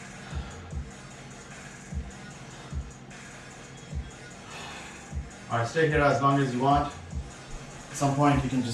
Alright, stay here as long as you want. At some point you can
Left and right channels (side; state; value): both; identical; correlation 1.00